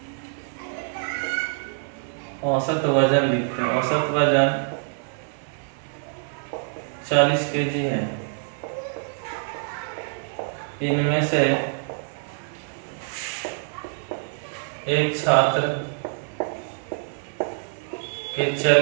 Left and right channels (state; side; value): silent; left; 61 dB below the other